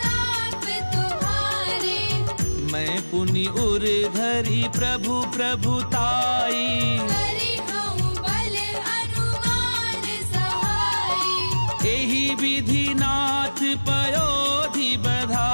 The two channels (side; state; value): both; inverted; correlation -1.00